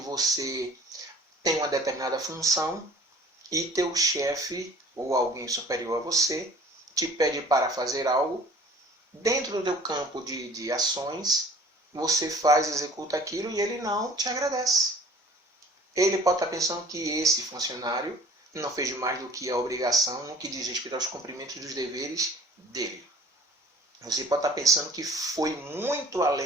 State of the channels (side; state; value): both; normal; correlation 0.49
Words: tem uma determinada função e teu chefe ou alguém superior a você te pede para fazer algo. Dentro do teu campo de ações, você faz, executa aquilo e ele não te agradece. Ele pode estar pensando que esse funcionário não fez mais do que a obrigação no que diz respeito aos cumprimentos dos deveres dele. Você pode estar pensando que foi muito